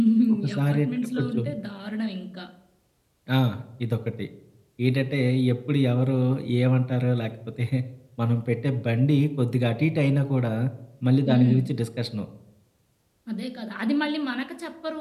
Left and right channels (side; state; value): both; identical; correlation 1.00